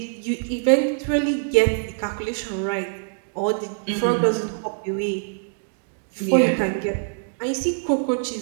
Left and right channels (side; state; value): left; silent; digital silence